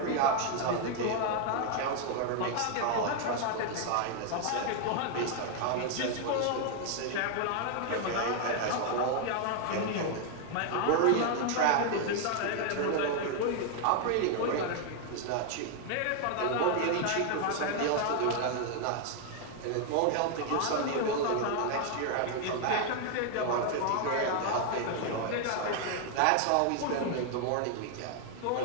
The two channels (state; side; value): different; both; correlation 0.00